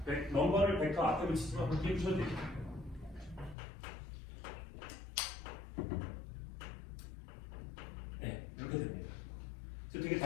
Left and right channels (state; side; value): drops out; right; at 3.6 s